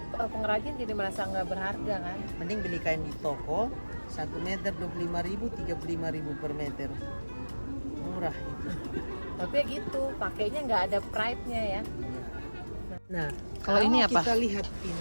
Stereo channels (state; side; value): inverted; both; correlation -1.00